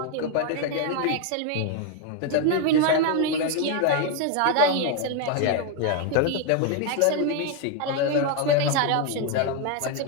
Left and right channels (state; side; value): different; both; correlation 0.01